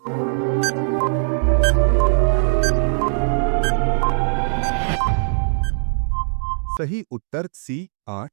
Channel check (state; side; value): silent; left; 66 dB below the other